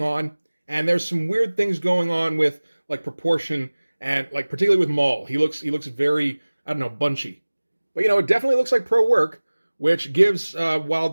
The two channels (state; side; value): inverted; both; correlation -1.00